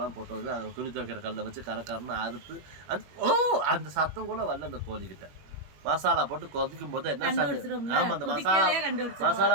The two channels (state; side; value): late; left; 21 ms